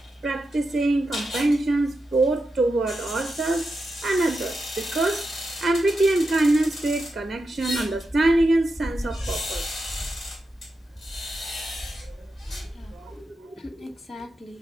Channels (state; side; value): normal; both; correlation 0.88